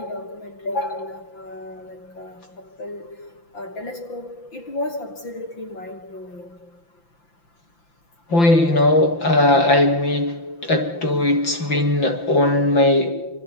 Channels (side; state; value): right; late; 5.9 ms